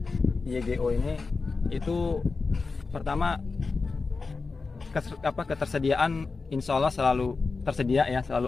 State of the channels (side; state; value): right; quieter; 4.2 dB